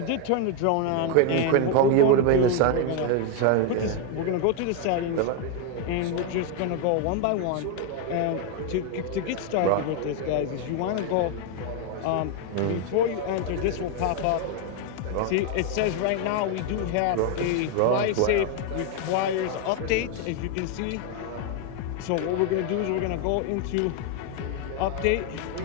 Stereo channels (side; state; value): both; different; correlation 0.01